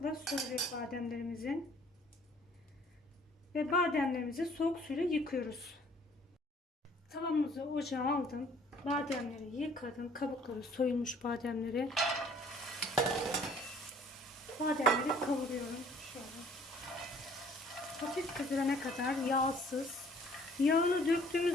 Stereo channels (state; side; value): normal; both; correlation 0.56